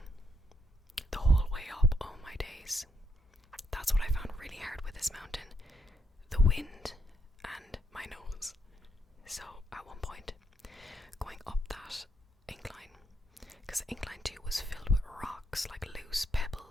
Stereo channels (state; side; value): normal; both; correlation 0.79